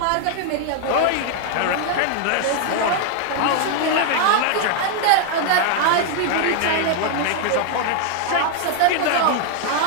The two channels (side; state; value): both; different; correlation 0.00